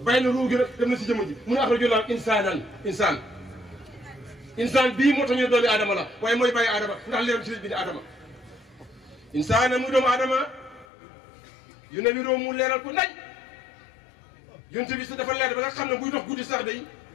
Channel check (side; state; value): right; drops out; at 10.9 s